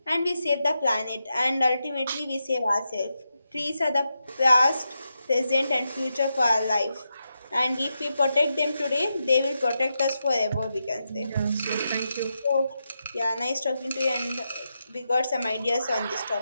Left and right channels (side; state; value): both; inverted; correlation -0.87